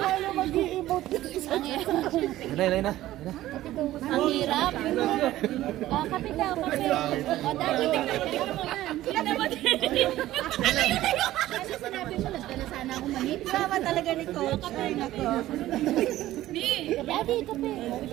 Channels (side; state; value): left; quieter; 14.9 dB